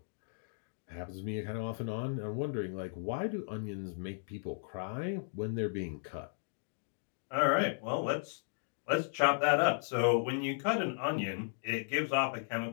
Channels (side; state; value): right; silent; digital silence